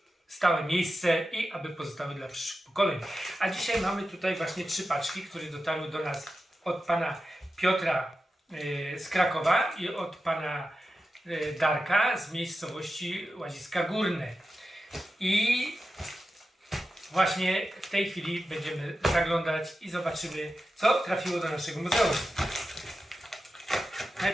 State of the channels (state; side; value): normal; both; correlation 0.91